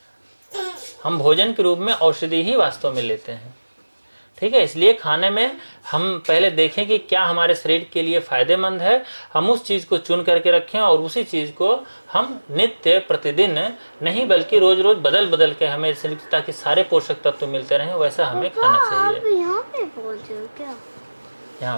हम भोजन के रूप में औषधि ही वास्तव में लेते हैं, ठीक है। इसलिए खाने में हम पहले देखें कि क्या हमारे शरीर के लिए फायदेमंद है, हम उस चीज़ को चुन करके रखें और उसी चीज़ को हम नित्य प्रतिदिन नहीं बल्कि रोज रोज बदल बदल के हमें शरीर, ताकि सारे पोषक तत्व मिलते रहें, वैसा हमें खाना चाहिए। यहाँ पे पहुंचे हो क्या? यहाँ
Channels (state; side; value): inverted; both; correlation -1.00